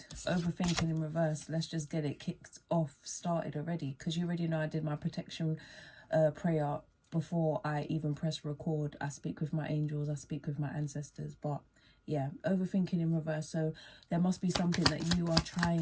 Overthinking in reverse. Let's just get it kicked off, started already, because you already know I did my protection prayer before I even press record. I speak with my angels, I speak with my ancestors, but yeah, overthinking in reverse. So there must be something that you are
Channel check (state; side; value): identical; both; correlation 1.00